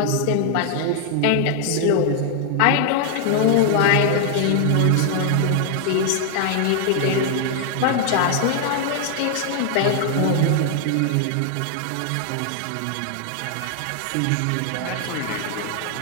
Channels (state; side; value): different; both; correlation 0.00